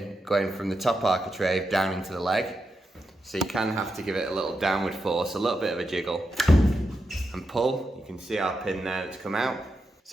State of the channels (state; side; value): normal; both; correlation 0.86